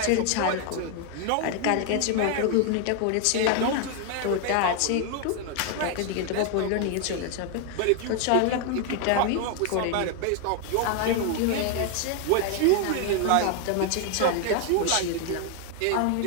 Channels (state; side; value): different; both; correlation 0.01